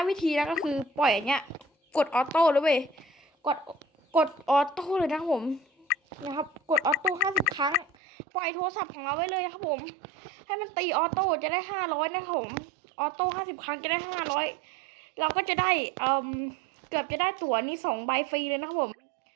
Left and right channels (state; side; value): drops out; left; at 7.9 s